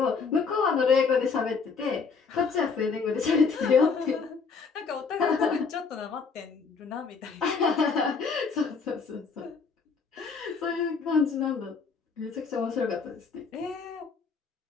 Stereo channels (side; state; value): right; quieter; 5.1 dB